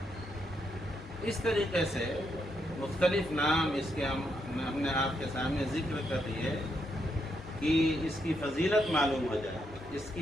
اس طریقے سے مختلف نام اس کے ہم نے آپ کے سامنے ذکر کر دیے کہ اس کی فضیلت معلوم ہو جائے، اس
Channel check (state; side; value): normal; both; correlation 0.79